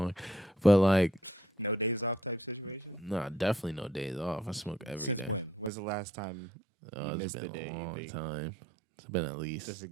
But like, nah, definitely no days off. I smoke every day. Oh, it's been a long time. It's been at least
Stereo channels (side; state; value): left; drops out; at 5.7 s